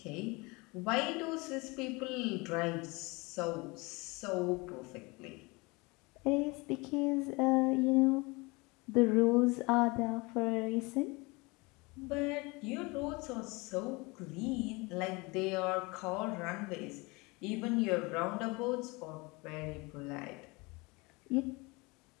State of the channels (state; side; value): quieter; right; 25.8 dB